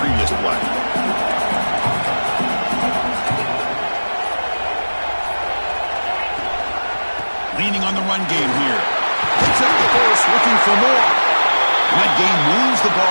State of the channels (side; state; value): both; inverted; correlation -1.00